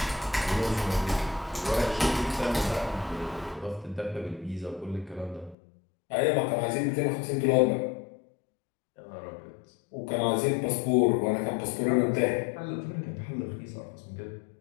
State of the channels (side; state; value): right; drops out; at 5.6 s